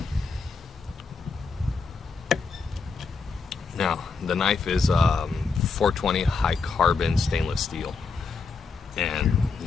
Now the knife is 420 high carbon stainless steel, and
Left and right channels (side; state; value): right; quieter; 4.7 dB